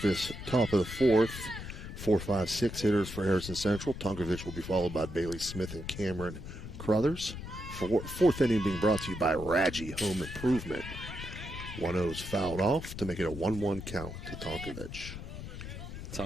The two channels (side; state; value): left; noise; rumble, 9 dB below the sound